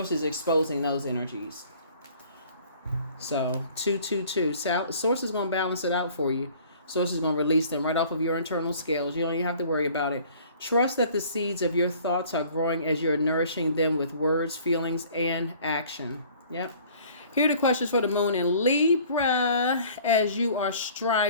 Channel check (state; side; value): inverted; both; correlation -0.52